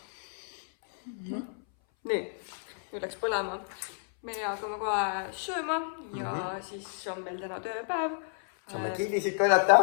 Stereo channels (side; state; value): right; silent; 57 dB below the other